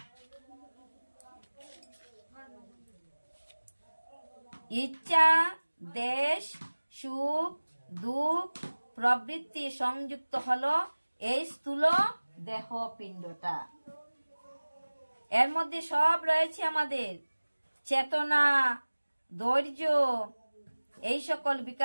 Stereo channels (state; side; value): inverted; both; correlation -1.00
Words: ইচ্ছা, দেশ, সুখ, দুঃখ প্রবৃত্তি সংযুক্ত হলো এই স্থূল দেহ পিণ্ডটা। এর মধ্যে সব রয়েছে আমাদের চেতনা, ধৈর্য, এই সকল